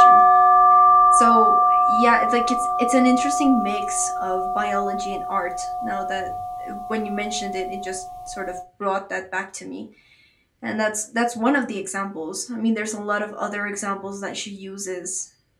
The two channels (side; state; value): both; identical; correlation 1.00